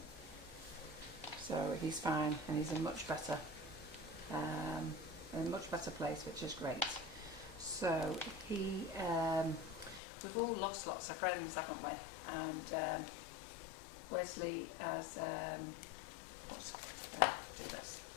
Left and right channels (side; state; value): right; drops out; at 10.0 s